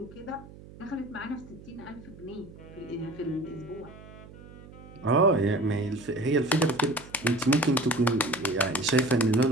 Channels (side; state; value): right; noise; hum, 18 dB below the sound